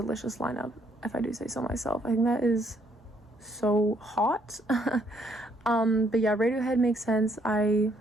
lineup, if I do say so myself. I think that is so hot. But yeah, Radiohead makes sense. I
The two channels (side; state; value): both; normal; correlation 0.69